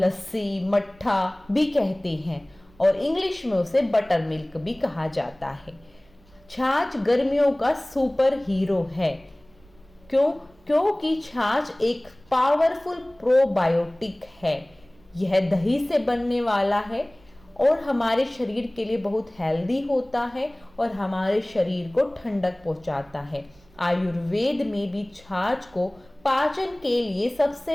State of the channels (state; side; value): noise; right; rumble, 28 dB below the sound